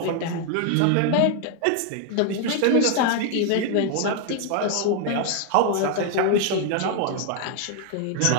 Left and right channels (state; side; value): different; both; correlation 0.00